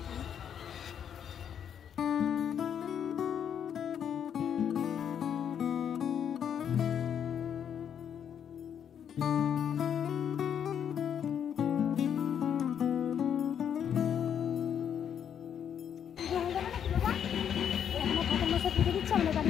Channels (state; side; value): quieter; right; 8.6 dB